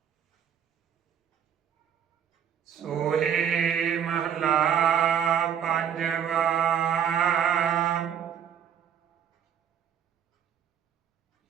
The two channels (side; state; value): left; quieter; 8.6 dB